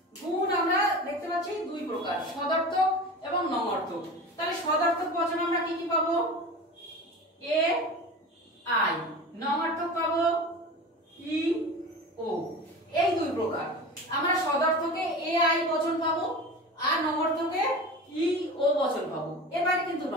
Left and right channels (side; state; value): both; normal; correlation 0.32